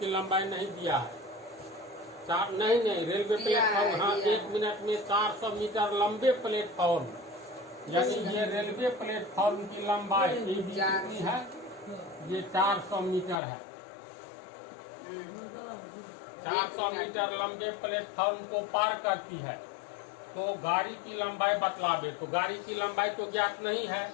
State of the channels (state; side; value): drops out; right; at 13.4 s